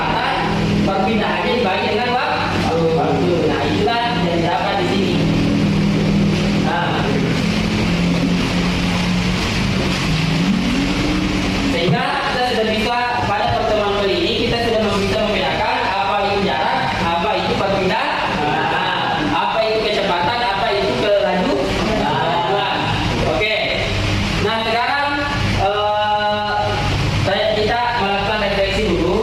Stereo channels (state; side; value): identical; both; correlation 1.00